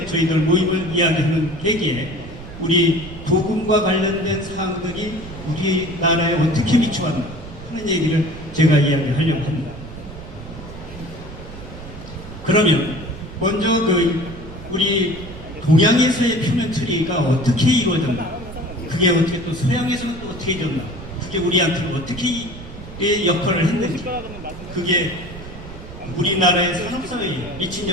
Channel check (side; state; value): right; noise; rumble, 13 dB below the sound